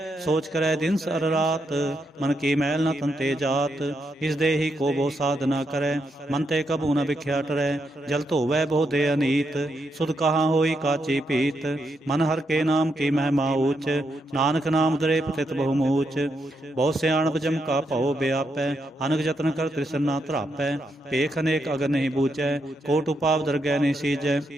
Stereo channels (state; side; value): normal; both; correlation 0.81